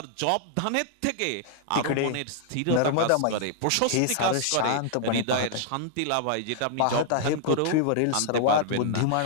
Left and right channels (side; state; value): both; different; correlation -0.01